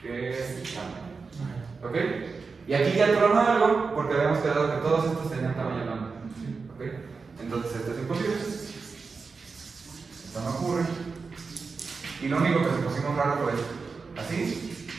¿Ok? Y aquí ya tronó algo porque habíamos quedado que todos estos tenían tamaño lambda. ¿Ok? Entonces esto es imposible. Esto no ocurre. Y lo único que se pusimos raro fue esto. Así,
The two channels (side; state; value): left; quieter; 4.7 dB